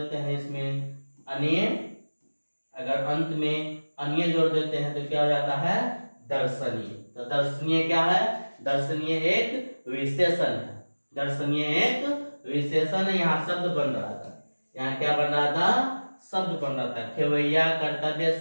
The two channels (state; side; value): inverted; both; correlation -1.00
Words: हैं। इसमें अन्य, अगर अंत में अन्य जोड़ देते हैं तो क्या हो जाता है, दर्शनीय। तो दर्शनीय क्या है, दर्शनीय एक विशेषण है, दर्शनीय एक विशेषण है। यहाँ शब्द बन रहा था, यहाँ क्या बन रहा था, शब्द बन रहा था। खेवैया, कर्तव्य,